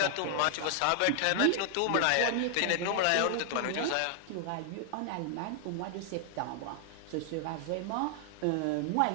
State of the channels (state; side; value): different; both; correlation 0.00